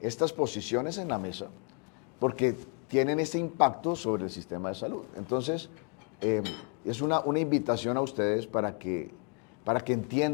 estas posiciones en la mesa porque tienen ese impacto sobre el sistema de salud. Entonces, es una invitación a ustedes para que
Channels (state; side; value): quieter; right; 36.4 dB